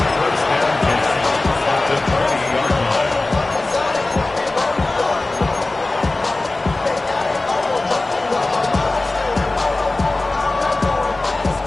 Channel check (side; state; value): right; quieter; 3.0 dB